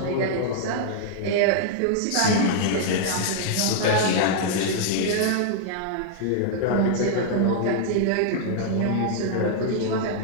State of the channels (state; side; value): different; both; correlation -0.01